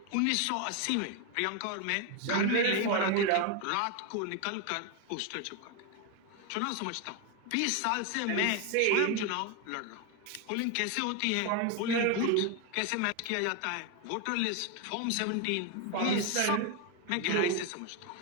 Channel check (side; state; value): both; different; correlation 0.01